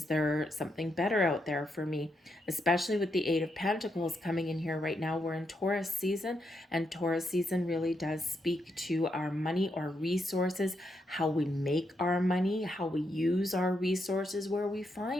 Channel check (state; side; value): normal; both; correlation 0.81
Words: there something better out there for me? Especially with the Eight of Pentacles coming in here right now. We're in Taurus season, and Taurus season really does speak to our money or resources, how we make our money, how we use our resources, where we